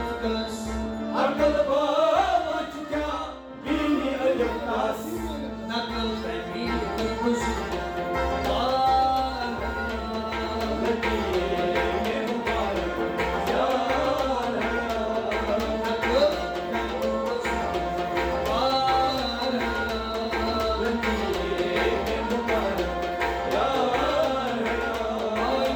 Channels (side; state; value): both; identical; correlation 1.00